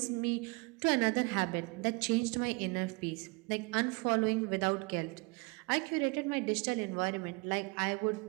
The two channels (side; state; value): left; quieter; 27.9 dB